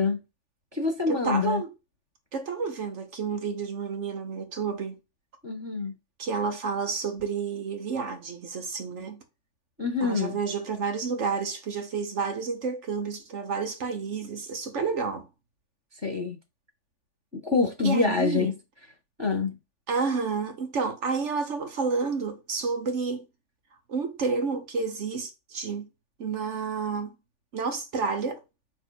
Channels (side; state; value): left; late; 3.4 ms